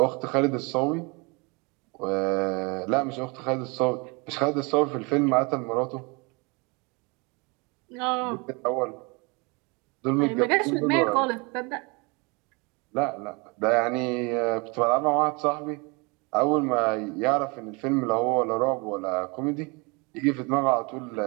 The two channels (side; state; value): left; quieter; 29.2 dB